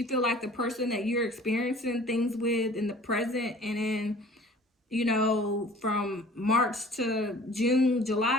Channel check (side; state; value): both; normal; correlation 0.48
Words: feel like the person that you're experiencing things with in the present and in, you know, from March to June,